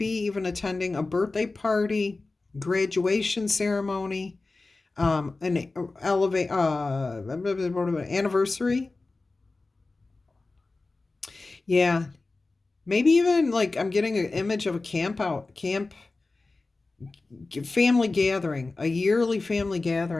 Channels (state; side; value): quieter; right; 3.5 dB